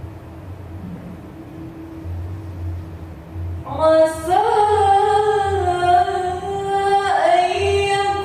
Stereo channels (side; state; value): both; identical; correlation 1.00